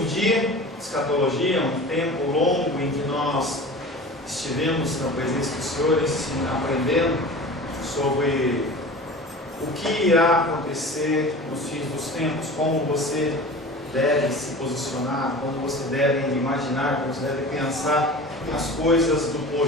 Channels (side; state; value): both; normal; correlation 0.37